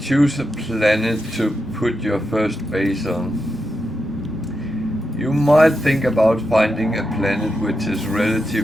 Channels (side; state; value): both; normal; correlation 0.86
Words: a planet to put your first base on, you might think about finding a planet which is